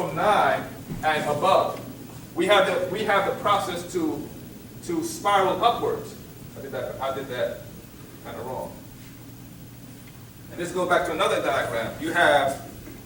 9 and above. We have the process to spiral upwards. I did that kind of wrong. And let's go back to another diagram. You have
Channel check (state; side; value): identical; both; correlation 1.00